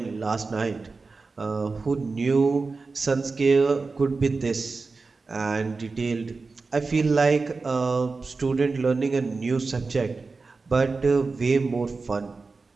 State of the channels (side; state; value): left; quieter; 4.1 dB